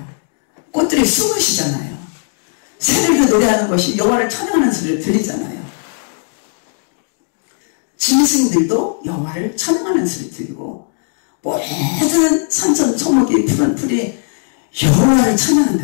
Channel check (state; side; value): silent; right; digital silence